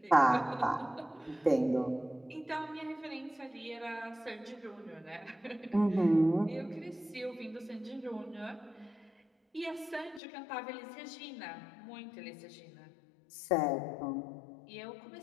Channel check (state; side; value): drops out; right; at 10.2 s